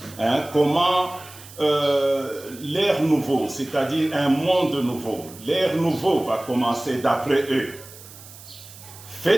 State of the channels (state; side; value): noise; right; hiss, 18 dB below the sound